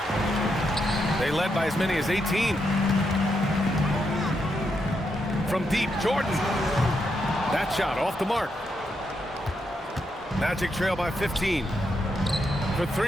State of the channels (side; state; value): both; normal; correlation 0.82